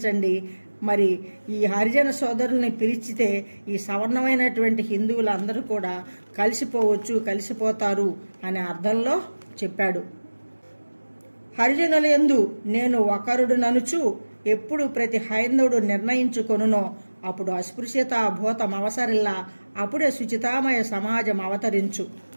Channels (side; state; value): both; inverted; correlation -1.00